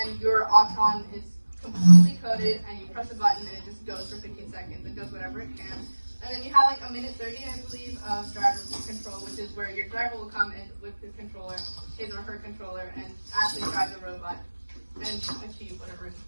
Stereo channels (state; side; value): inverted; both; correlation -1.00